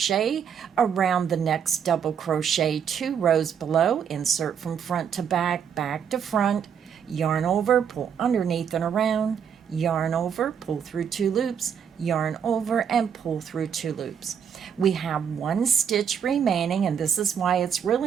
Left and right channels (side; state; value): left; quieter; 7.8 dB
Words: around the next double crochet 2 rows below, insert from front to back, back to front, yarn over, pull underneath and around, yarn over, pull through 2 loops, yarn over and pull through 2 loops. We have 1 stitch remaining, and this is why it's